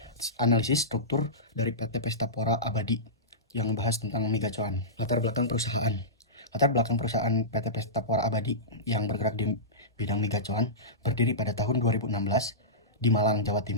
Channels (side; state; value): both; normal; correlation -0.17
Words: analisis struktur dari PT Pestapora Abadi yang membahas tentang megacuan. Latar belakang perusahaan. Latar belakang perusahaan PT Pestapora Abadi yang bergerak di bidang megacuan berdiri pada tahun 2016 di Malang, Jawa